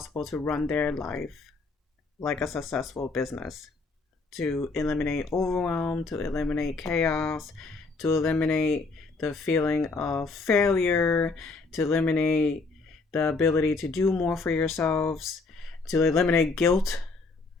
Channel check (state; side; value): quieter; right; 3.8 dB